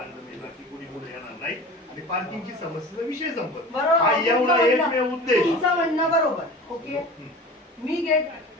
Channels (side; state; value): both; normal; correlation 0.37